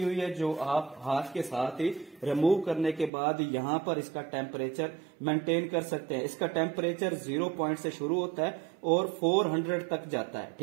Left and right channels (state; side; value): drops out; left; at 3.1 s